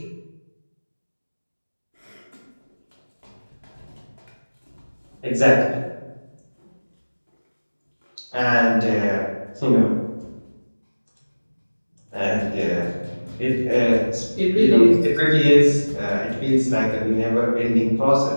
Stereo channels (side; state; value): both; inverted; correlation -1.00